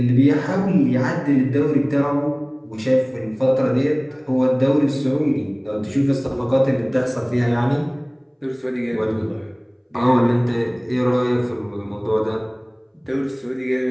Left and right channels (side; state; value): both; identical; correlation 1.00